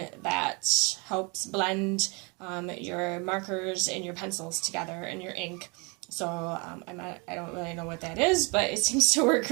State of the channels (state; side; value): quieter; left; 30.5 dB